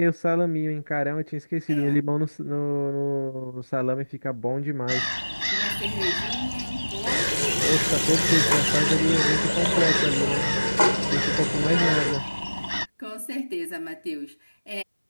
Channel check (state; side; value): inverted; both; correlation -1.00